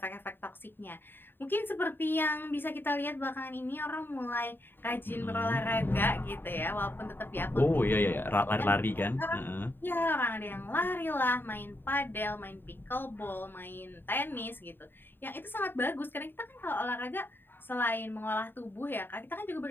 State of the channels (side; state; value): right; late; 0.097 ms